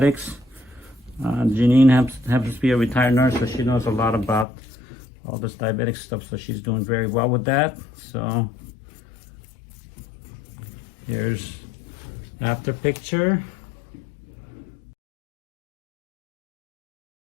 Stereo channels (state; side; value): drops out; right; at 4.5 s